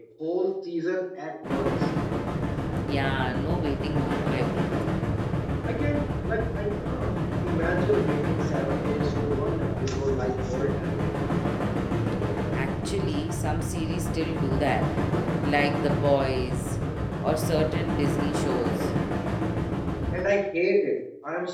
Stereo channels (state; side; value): identical; both; correlation 1.00